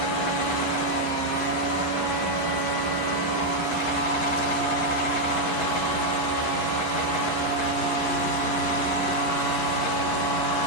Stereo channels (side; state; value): right; late; 11 ms